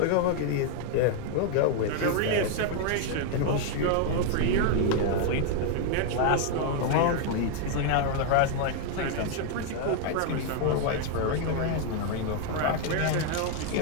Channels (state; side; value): different; both; correlation 0.00